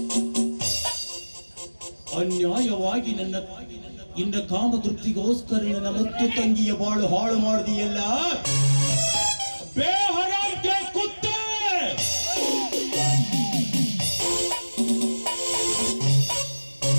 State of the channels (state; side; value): inverted; both; correlation -1.00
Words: ಅನ್ಯಾಯವಾಗಿ ನಿನ್ನ ಕಾಮತೃಪ್ತಿಗೋಸ್ಕರ ನನ್ನ ಮತ್ತು ತಂಗಿಯ ಬಾಳು ಹಾಳು ಮಾಡಿದೆಯಲ್ಲ. ಬೇಹರಾಂತೆ ಕುತ್ತೆ,